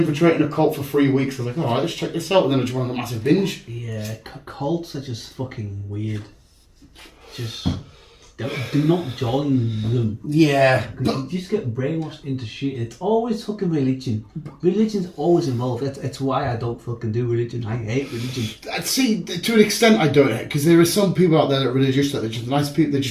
a cult for 3 weeks. I was like, alright, let's check this out. And then I just went on a massive binge. Yeah, cults are just fucking weird. Just do not join them. Yeah. You just get brainwashed into shit. It's always fucking religion. Religion's always involved. That's why I don't fucking do religion. I hate religion. See, to an extent I don't, because there are some people out there that are religious, that they're just nice people, they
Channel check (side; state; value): both; identical; correlation 1.00